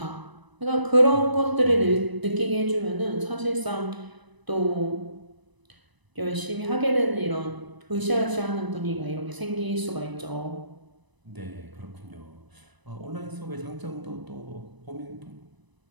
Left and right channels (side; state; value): left; late; 1.0 ms